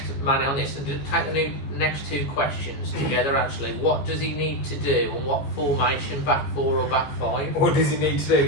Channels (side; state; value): right; late; 14 ms